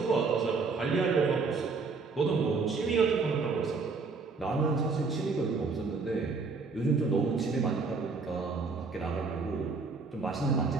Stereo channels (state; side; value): quieter; left; 4.4 dB